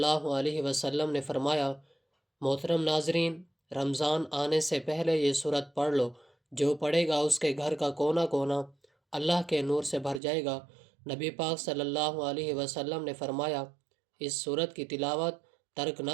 علیہ وسلم نے فرمایا، محترم ناظرین، رمضان آنے سے پہلے یہ سورت پڑھ لو، جو پڑھے گا اس کے گھر کا کونا کونا اللہ کے نور سے بھر جائے گا۔ نبی پاک صلی اللہ علیہ وسلم نے فرمایا، اس سورت کی تلاوت ترک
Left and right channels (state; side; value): drops out; left; at 10.2 s